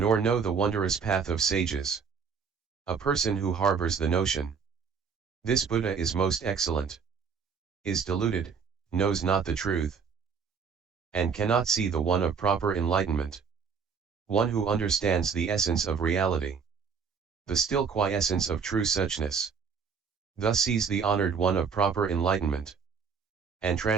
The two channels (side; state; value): left; quieter; 6.1 dB